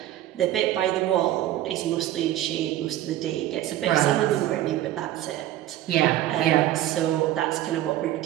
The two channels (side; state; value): left; quieter; 13.8 dB